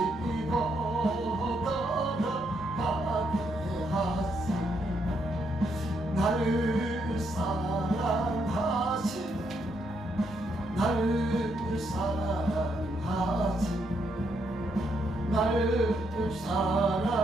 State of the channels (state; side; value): normal; both; correlation 0.77